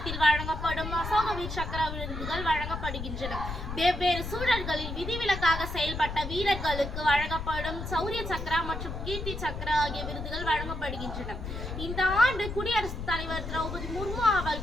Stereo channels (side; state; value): left; noise; rumble, 6 dB below the sound